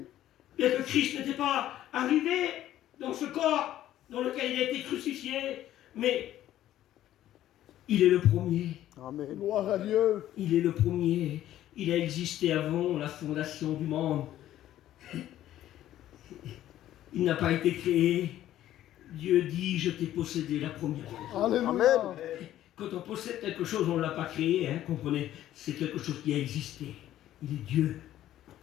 Bien que Christ n'était pas arrivé dans ce corps dans lequel il a été crucifié, mais il est le premier. Amen. Gloire à Dieu. Il est le premier. Il a existé avant la fondation du monde. Il n'a pas été créé. Dieu dit, je t'ai possédé la première fois. Amen. Quand on possède quelque chose, on ne l'a pas créé, hein, comprenez. C'est quelque chose qui a existé. Il est Dieu.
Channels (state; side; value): quieter; right; 12.9 dB